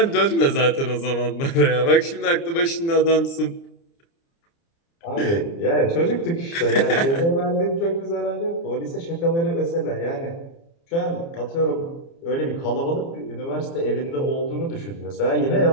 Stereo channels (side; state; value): right; late; 30 ms